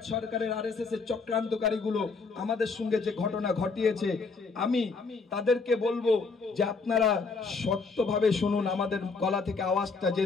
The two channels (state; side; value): quieter; right; 4.5 dB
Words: সরকারের আরএসএস এর চক্রান্তকারীগুলো আমাদের সঙ্গে যে ঘটনা ঘটিয়েছে, আমি তাদেরকে বলবো যে আপনারা শক্তভাবে শুনুন, আমাদের গলা থেকে আওয়াজটা